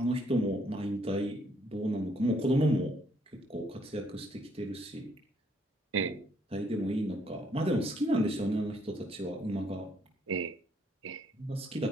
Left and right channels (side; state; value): both; normal; correlation 0.69